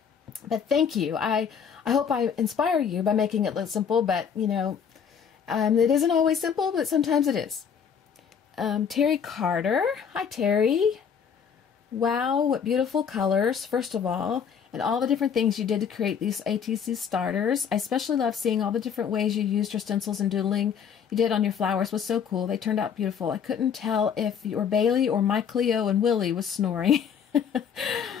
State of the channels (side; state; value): right; quieter; 7.3 dB